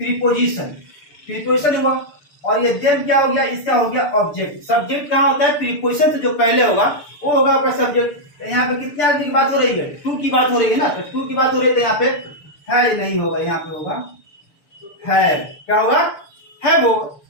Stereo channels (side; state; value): right; late; 6.8 ms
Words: हुआ, और ये देम क्या हो गया, इसका हो गया ऑब्जेक्ट। सब्जेक्ट कहाँ होता है, प्रीपोजिशन से जो पहले होगा वो होगा आपका सब्जेक्ट। यहाँ पे कितने आदमी की बात हो रही है, टू की बात हो रही है ना, तो टू की बात हो रही है, तो यहाँ पे है नहीं होगा, यहाँ पे होगा है, क्या होगा, है वो।